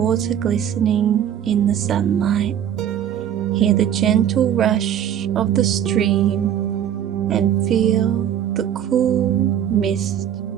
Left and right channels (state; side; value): quieter; left; 9.9 dB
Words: glistening in the sunlight, hear the gentle rush of the stream, and feel the cool mist